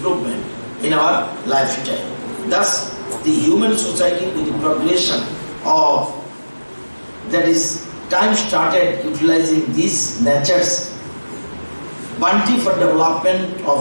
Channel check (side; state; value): both; inverted; correlation -1.00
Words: in our lifestyle. Thus, the human society with the progression of that is time started utilizing these nature's bounty for development